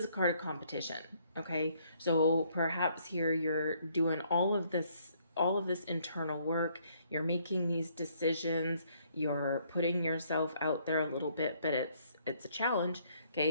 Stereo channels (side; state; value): both; inverted; correlation -0.67